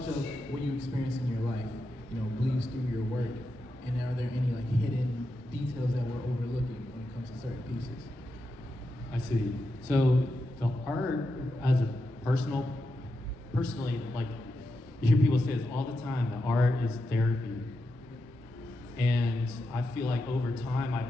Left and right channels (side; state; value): both; normal; correlation 0.87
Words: of what you experience in your life, bleeds through your work, and are there any like hidden details that we're overlooking when it comes to certain pieces? I see. So the art as a personally, like you hear people say this all the time, that art is therapy. And I feel like over time I